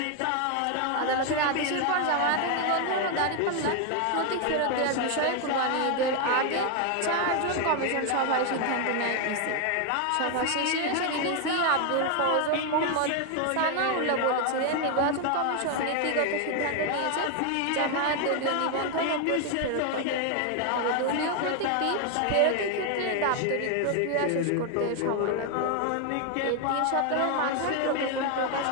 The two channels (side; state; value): both; different; correlation 0.01